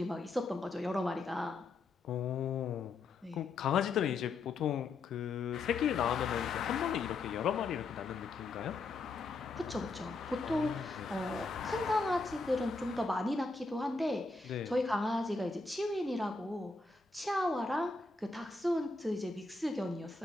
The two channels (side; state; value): right; quieter; 3.8 dB